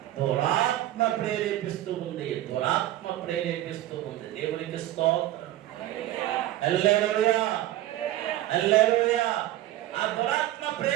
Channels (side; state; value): left; quieter; 14.4 dB